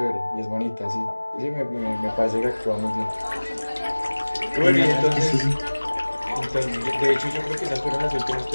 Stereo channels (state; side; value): inverted; both; correlation -1.00